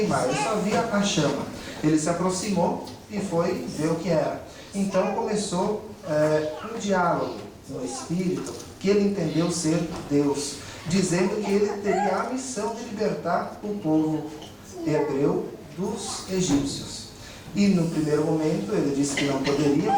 Ele só via a chama. Ele se aproximou e foi ver o que era. Então começou um diálogo no espírito, que ele entendeu ser Deus, dizendo que ele teria a missão de libertar o povo hebreu dos egípcios. E no primeiro momento ele disse que não poderia,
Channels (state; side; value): identical; both; correlation 1.00